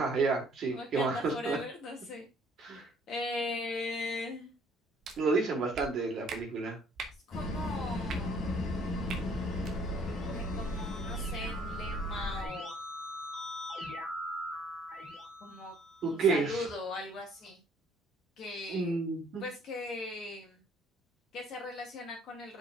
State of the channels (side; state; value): both; normal; correlation 0.60